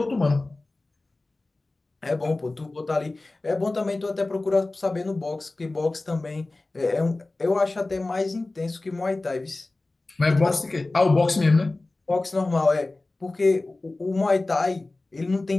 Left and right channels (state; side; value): quieter; right; 3.1 dB